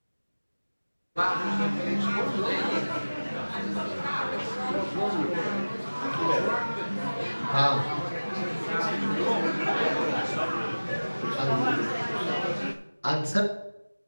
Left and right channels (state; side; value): inverted; both; correlation -1.00